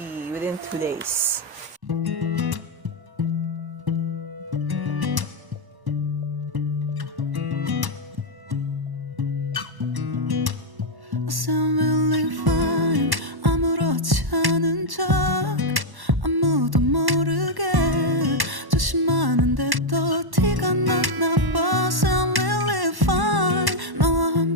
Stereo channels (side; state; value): left; late; 1.1 ms